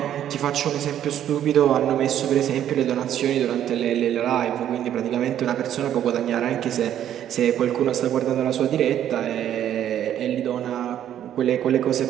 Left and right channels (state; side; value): quieter; left; 10.8 dB